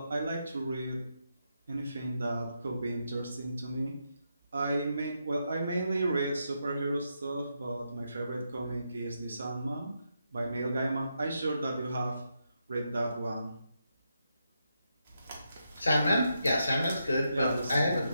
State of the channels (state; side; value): inverted; both; correlation -0.83